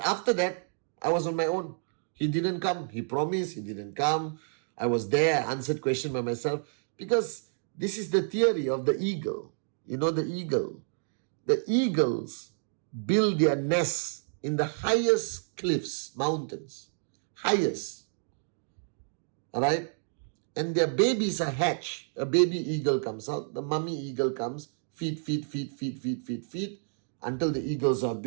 after that, I was on my own. He didn't come. He promised. He didn't come. I was there. I answered questions by myself. Because this is the theory of the eagle. You know the eagle. The eagles build their nests in the highest cliffs, mountains. Highest. Alright? And their babies are hatched. A baby eagle comes out. The mummy eagle comes. Feed, until the eagles are a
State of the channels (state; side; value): silent; left; digital silence